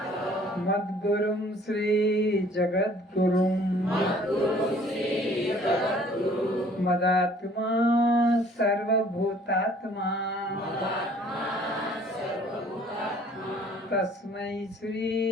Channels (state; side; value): normal; both; correlation 0.55